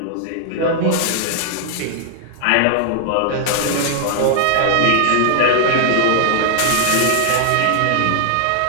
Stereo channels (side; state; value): both; different; correlation -0.01